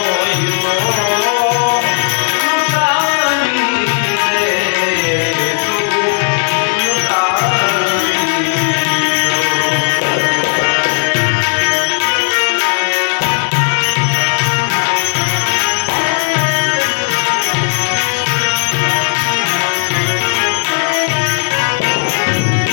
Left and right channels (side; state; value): right; silent; digital silence